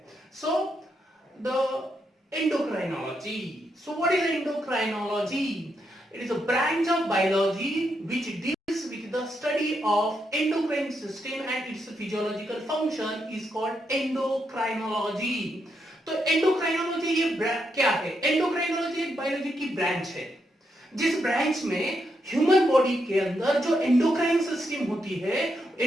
So the endocrinology. So what is endocrinology? It is a branch of biology which deals with the study of endocrine system and its physiological function is called endocrinology. तो endocrinology ये क्या है? endocrinology एक biology की branch है जिस branch में human body के अंदर जो एंडोक्राइन सिस्टम होती है,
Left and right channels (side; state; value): both; normal; correlation 0.81